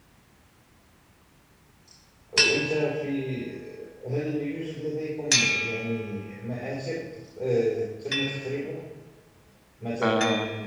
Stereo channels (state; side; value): identical; both; correlation 1.00